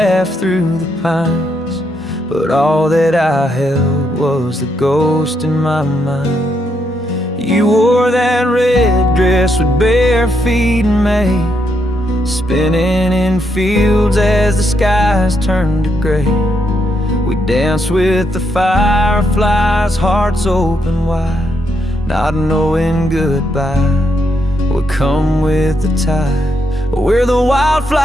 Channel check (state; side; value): normal; both; correlation 0.78